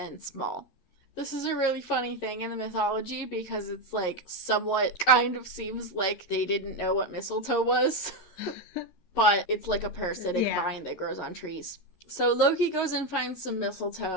small. This is a really funny thing in the mythology because it's like somewhat kind of seems like they didn't know what mistletoe was. But it's like a parasitic vine that grows on trees. So Loki goes and finds some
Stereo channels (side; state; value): right; late; 13 ms